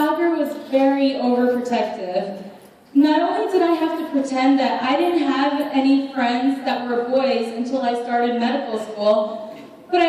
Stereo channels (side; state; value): both; identical; correlation 1.00